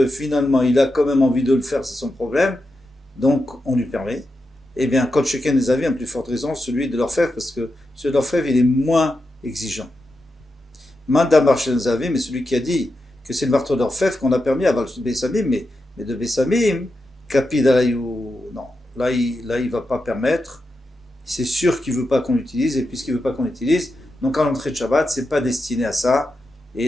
finalement il a quand même envie de le faire, c'est son problème, donc on lui permet. Eh bien, Kol Sheken des Avim, à plus forte raison, celui de l'orfèvre, parce que celui de l'orfèvre il est moins exigeant. Manda Marshel Zavim, mais celui qui a dit que c'est le marteau d'orfèvre qu'on a permis à Bessamim, mais de Bessamim, Kapid Alayou, non, là il va pas permettre, c'est sûr qu'il veut pas qu'on l'utilise, et puisqu'il veut pas qu'on l'utilise, donc à l'entrée de Shabbat, c'est pas destiné à ça,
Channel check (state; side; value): normal; both; correlation 0.88